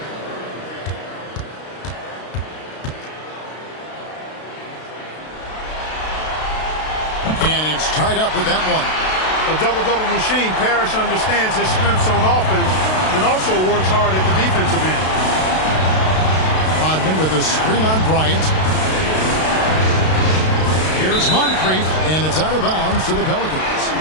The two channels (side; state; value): right; late; 32 ms